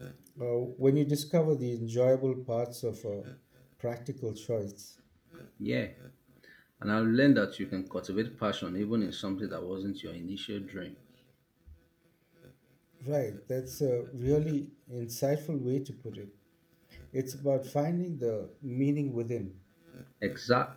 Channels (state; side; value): identical; both; correlation 1.00